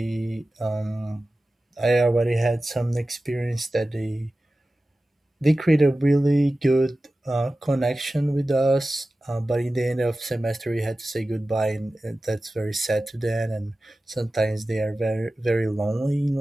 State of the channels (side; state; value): both; normal; correlation 0.95